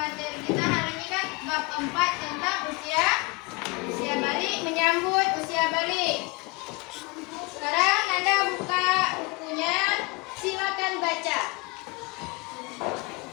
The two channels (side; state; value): right; quieter; 26.2 dB